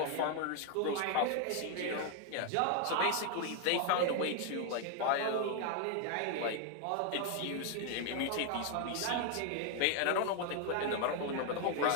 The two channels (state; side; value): different; both; correlation 0.00